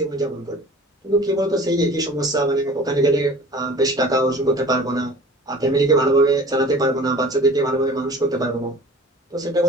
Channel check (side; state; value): both; normal; correlation 0.43